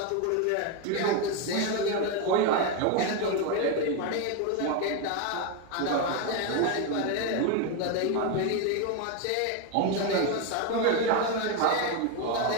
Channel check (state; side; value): different; both; correlation 0.02